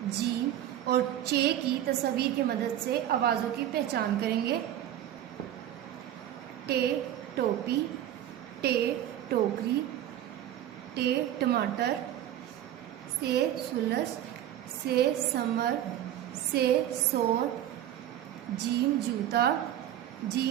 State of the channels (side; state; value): left; quieter; 11.9 dB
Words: जी और चे की तस्वीर की मदद से आवाज़ों की पहचान करेंगे। टे टोपी, टे टोकरी, टे टमाटर, से सुलस, से समर, से सोर, जीम जूता,